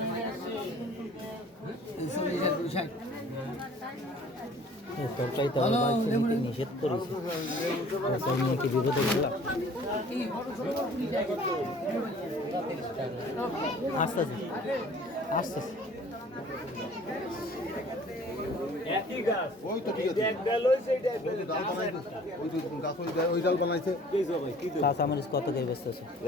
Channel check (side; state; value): both; normal; correlation 0.51